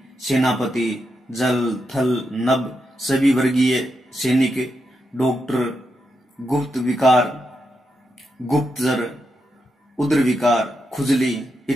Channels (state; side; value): normal; both; correlation 0.84